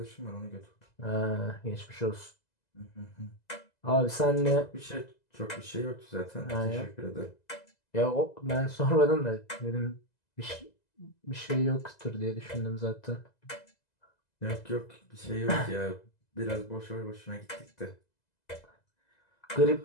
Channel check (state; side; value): late; right; 2.0 ms